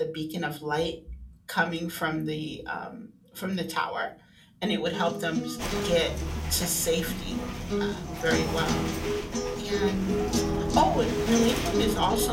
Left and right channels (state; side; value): identical; both; correlation 1.00